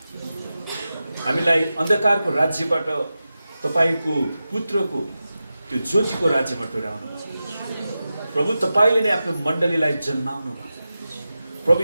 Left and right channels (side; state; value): both; inverted; correlation -0.93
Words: हामीलाई अन्धकारको राज्यबाट तपाईको पुत्रको त्यो ज्योतिको राज्यमा टोर्याउनु भयो। प्रभु, तपाईले नै आफ्नो मण्डलीलाई जन्माउनु भयो। प्रभु